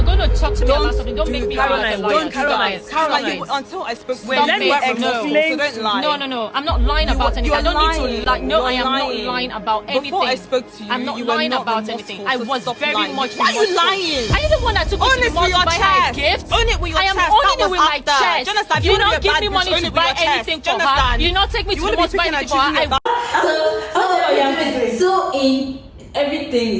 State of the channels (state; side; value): identical; both; correlation 1.00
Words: going to talk to me about something, don't make me Caroline. Caroline, until I spoke to you, let me explain. So don't lie. No. I'm not lying about anything. I don't need to lie. No, I am not lying about anything. Before I spoke to you, I'm not lying about anything. I was very much. Why are you lying? Are you the one that took me to the mall to buy her a gift? Own it with your I am chest. owning it with my chest. You don't give me money to buy anything for her. You not take me to the mall to buy anything for her. So in everything